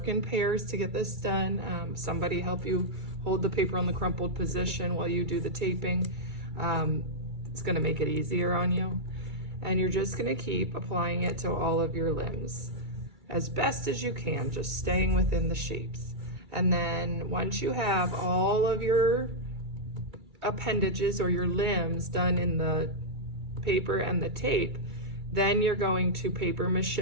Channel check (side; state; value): left; late; 2.3 ms